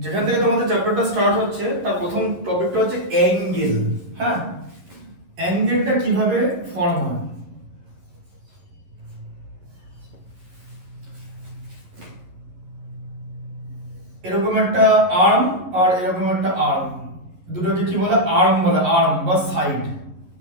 যেখান থেকে তোমাদের চ্যাপ্টারটা স্টার্ট হচ্ছে তার প্রথম টপিকটা হচ্ছে অ্যাঙ্গেল। হ্যাঁ, অ্যাঙ্গেলটা কিভাবে ফর্ম হয়। এরকম একটা আর্ম আর এরকম একটা আর্ম, দুটোকে কি বলে? আর্ম বলে, আর্ম বা সাইড।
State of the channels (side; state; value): left; late; 11 ms